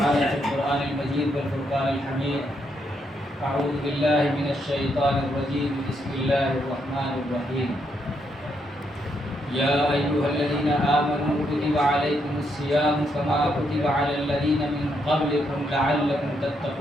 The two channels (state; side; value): normal; both; correlation 0.77